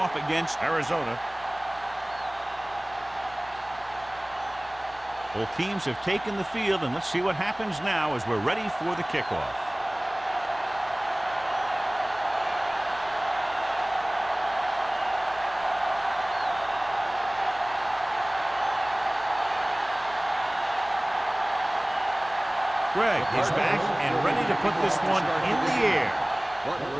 against Arizona. Both teams have taken the field, and let's see what happens now as we're ready for the kickoff. Greg is back and ready to put this one in the air.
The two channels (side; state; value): right; noise; hum, 25 dB below the sound